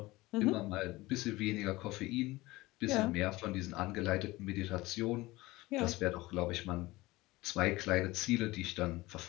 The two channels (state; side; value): quieter; right; 20.0 dB